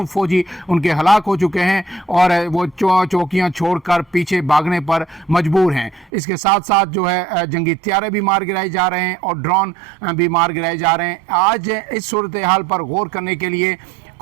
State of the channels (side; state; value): left; drops out; at 6.1 s